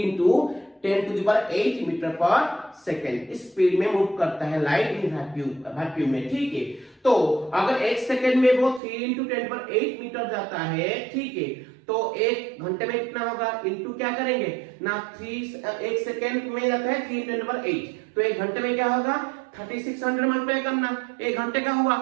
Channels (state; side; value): drops out; left; at 8.8 s